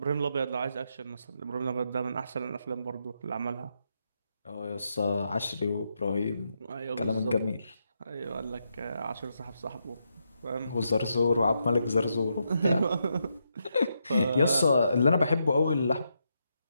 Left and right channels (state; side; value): inverted; both; correlation -0.82